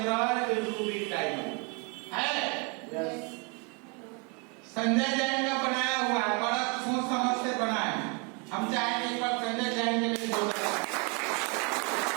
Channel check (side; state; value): left; quieter; 33.5 dB